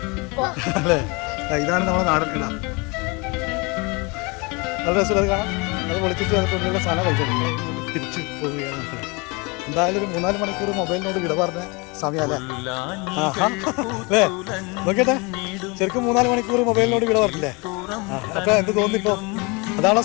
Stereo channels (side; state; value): right; quieter; 28.5 dB